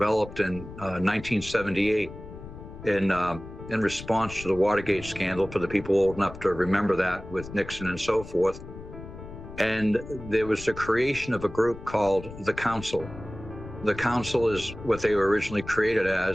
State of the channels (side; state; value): left; noise; rumble, 14 dB below the sound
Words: in 1978 in response to the Watergate scandal, for the people old enough to remember that, with Nixon and so forth. And there was the creation of a group called the Council. The Council is what they were originally created